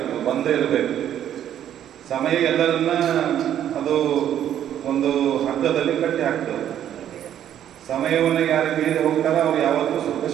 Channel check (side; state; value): left; quieter; 10.5 dB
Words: ಬಂದ ಇರಬೇಕು. ಸಮಯ ಎಲ್ಲರನ್ನ ಅದು ಒಂದು ಹಗ್ಗದಲ್ಲಿ ಕಟ್ಟಿ ಹಾಕ್ತದೆ. ಸಮಯವನ್ನು ಯಾರು ಮೀರಿ ಹೋಗ್ತಾರೋ ಅವ್ರು ಯಾವತ್ತೂ ಸುಖ